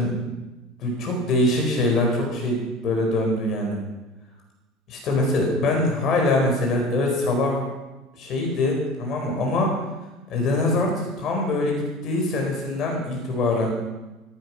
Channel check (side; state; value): both; normal; correlation 0.37